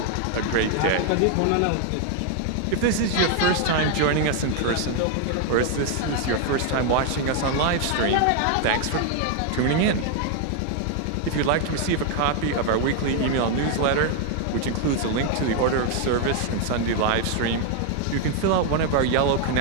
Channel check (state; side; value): different; both; correlation 0.00